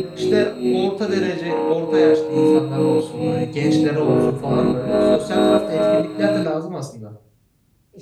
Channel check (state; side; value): identical; both; correlation 1.00